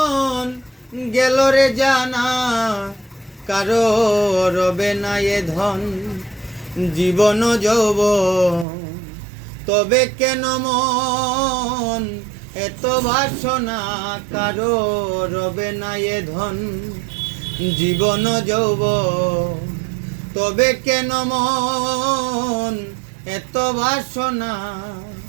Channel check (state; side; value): drops out; left; at 8.7 s